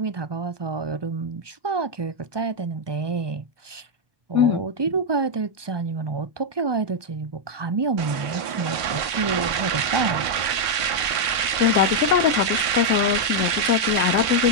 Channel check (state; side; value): late; left; 1.5 ms